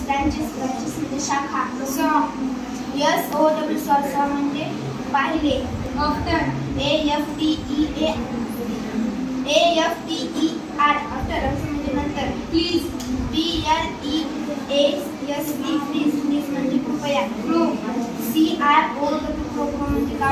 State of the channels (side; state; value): both; identical; correlation 1.00